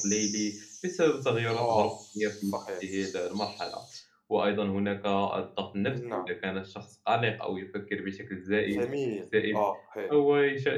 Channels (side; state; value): both; identical; correlation 1.00